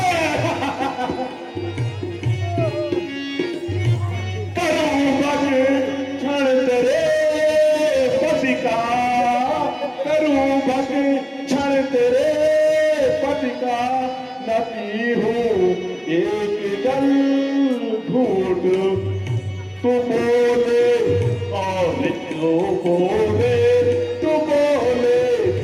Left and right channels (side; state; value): both; identical; correlation 1.00